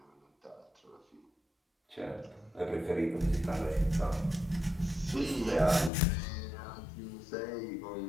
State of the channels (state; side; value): drops out; right; at 5.9 s